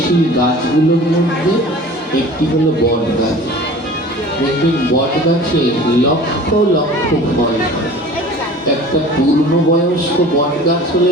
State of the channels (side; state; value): both; normal; correlation 0.42